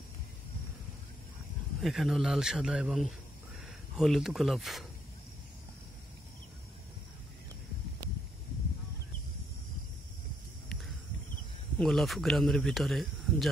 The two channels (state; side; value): normal; both; correlation 0.74